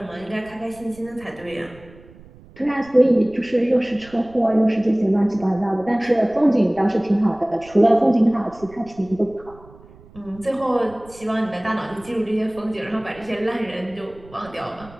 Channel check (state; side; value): noise; right; rumble, 22 dB below the sound